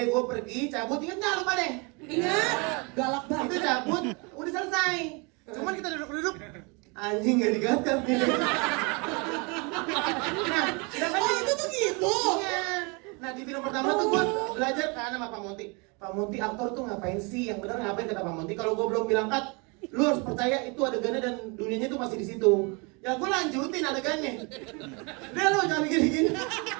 gue pergi, cabut, inget gak lupa deh? Ingat, galak banget. Itu cabut, udah selesai. Cuman kita duduk-duduk, anjing gak digagal nih. Nah, oh itu tuh gitu? Iya. Nah di film pertama tuh gue belajar kan sama Pak Monty. Pak Monty aktor tuh ngapain sih? Yang bener ngapain kata Pak Monty? Kalau gue belum bilang cut, lu harus percaya itu adegannya dan dunianya tuh masih di situ. Ya gue lanjutin adegannya. Udah lu jangan gini-gini.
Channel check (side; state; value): left; quieter; 30.8 dB